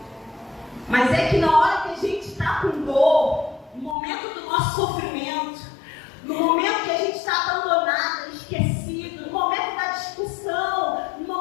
Mas é que na hora que a gente está com dor, no momento do nosso sofrimento, no momento que a gente está abandonada, esquecido, no momento da discussão, no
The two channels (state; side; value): drops out; right; at 4.0 s